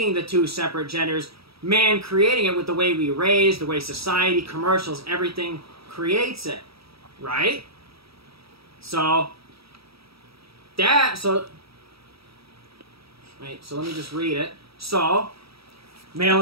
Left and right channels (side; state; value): left; late; 0.76 ms